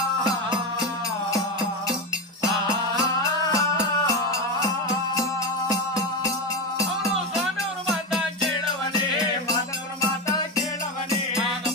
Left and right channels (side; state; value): both; normal; correlation 0.15